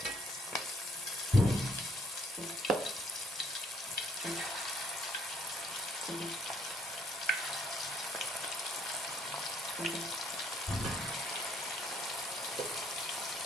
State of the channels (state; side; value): normal; both; correlation 0.67